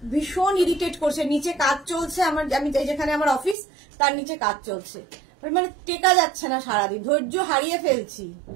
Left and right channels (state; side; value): drops out; left; at 3.6 s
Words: ভীষণ ইরিটেট করছে, নিচে কাজ চলছে আমার, আমি যেখানে আমার অফিস তার নিচে কাজ চলছে, মানে টেকা যাচ্ছে না, সারাদিন ধৈর্য হারিয়ে ফেলছি।